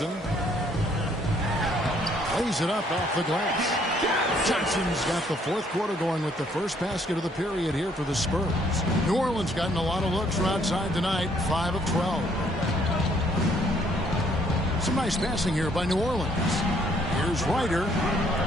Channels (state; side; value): normal; both; correlation 0.65